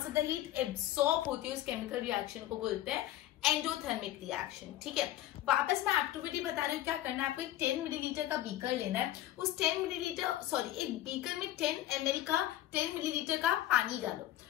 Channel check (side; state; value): right; quieter; 14.0 dB